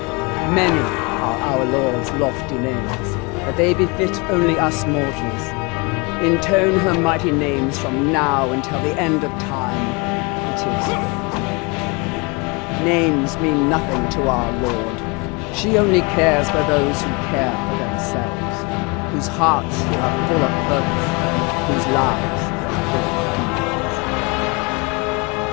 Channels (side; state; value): right; quieter; 28.7 dB